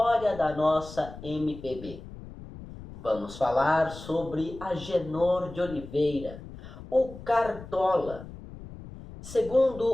da nossa MPB. Vamos falar sobre Agenor de Oliveira, o Cartola.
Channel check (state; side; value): noise; left; rumble, 14 dB below the sound